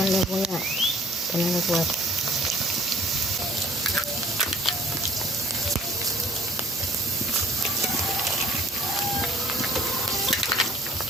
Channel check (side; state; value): both; normal; correlation 0.55